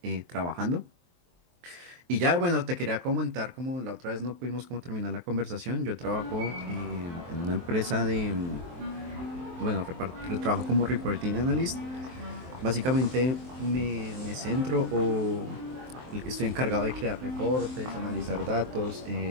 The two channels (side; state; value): left; late; 23 ms